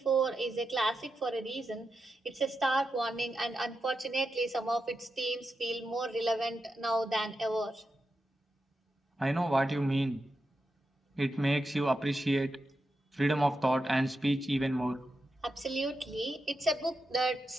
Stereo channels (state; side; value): normal; both; correlation 0.88